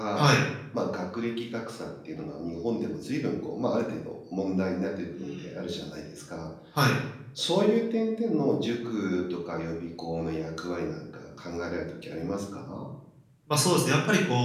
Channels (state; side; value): identical; both; correlation 1.00